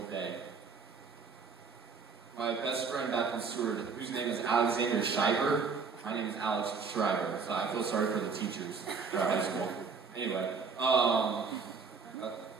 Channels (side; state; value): left; quieter; 5.2 dB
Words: day. My best friend back in Seward, whose name is Alexander Shriver, my name is Alex Shriver, so I feel sorry for the teachers at high school. Anyway, wow,